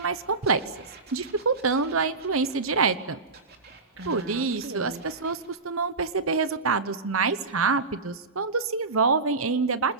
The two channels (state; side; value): quieter; left; 4.1 dB